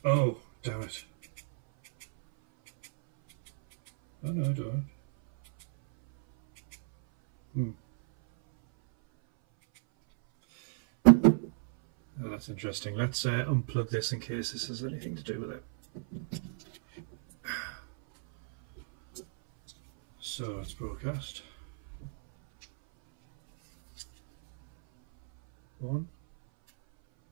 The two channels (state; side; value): silent; left; 57 dB below the other